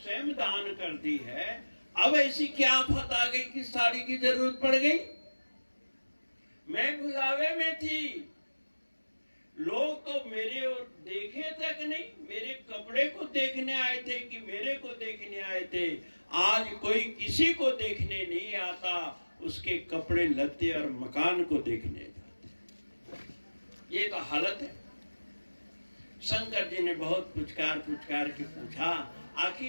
दान कर दी है, अब ऐसी क्या आफत आ गई कि साड़ी की जरूरत पड़ गई? मैं बुलावे में थी, लोग तो मेरे और देखे तक नहीं, मेरे कपड़े को देखने आए थे कि मेरे को देखने आए थे। आज कोई किसी को देखने नहीं आता, उसके कपड़े लत्ते और मकान को देखने जाते। ये तो हालत है। शंकर जी ने बहुत पुचकार के पूछा,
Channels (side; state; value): both; inverted; correlation -1.00